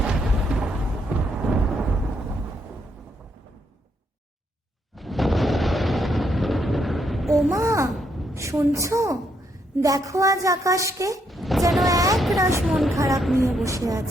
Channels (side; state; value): both; normal; correlation 0.75